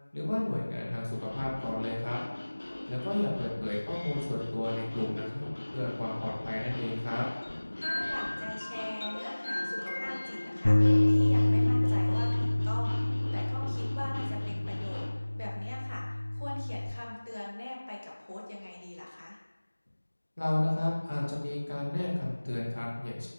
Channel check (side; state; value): both; inverted; correlation -1.00